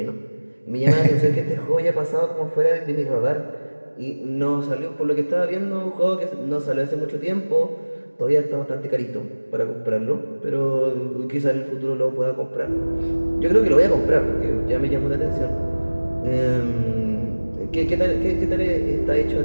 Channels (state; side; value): inverted; both; correlation -1.00